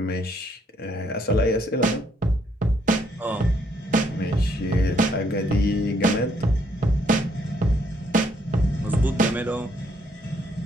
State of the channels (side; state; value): both; normal; correlation 0.70